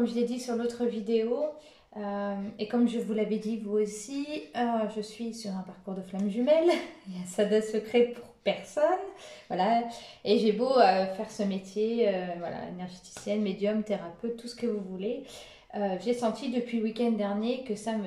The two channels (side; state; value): both; identical; correlation 1.00